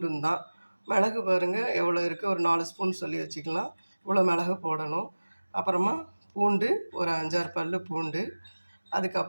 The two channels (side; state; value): both; inverted; correlation -1.00